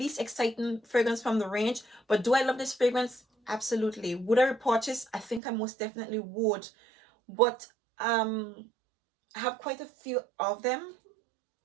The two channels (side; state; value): left; drops out; at 5.4 s